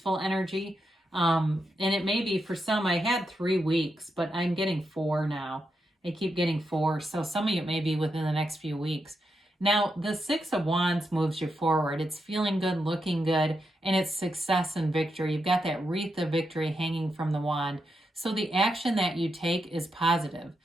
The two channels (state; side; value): normal; both; correlation 0.84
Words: energy. And it may be for some, I had 3 weeks, but I'm getting 4 now. I keep getting 4. So some of you may be within the next few weeks. Now, the 6 of Wands moves you forward. It's feeling good, looking good, and it's success and victory. You've got that wreath of victory hanging from the wand. So the action that you take is positive.